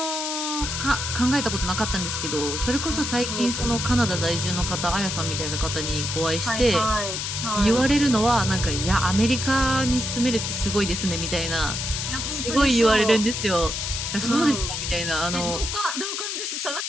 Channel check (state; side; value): noise; left; hiss, 3 dB below the sound